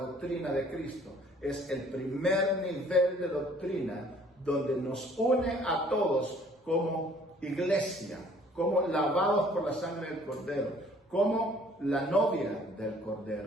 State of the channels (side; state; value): both; normal; correlation 0.57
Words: de Cristo es el primer nivel de doctrina donde nos une a todos como iglesia, como lavados por la sangre del Cordero, como la novia del